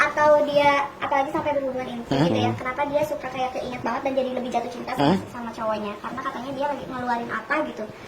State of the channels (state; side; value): identical; both; correlation 1.00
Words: dia apalagi sampai berhubungan intim gitu ya. Kenapa dia suka kayak keinget banget dan jadi lebih jatuh cinta sama cowoknya? Karena katanya dia lagi ngeluarin apa gitu.